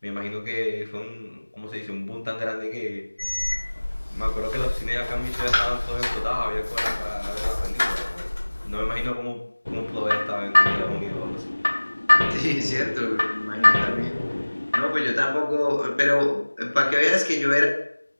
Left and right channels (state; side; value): inverted; both; correlation -1.00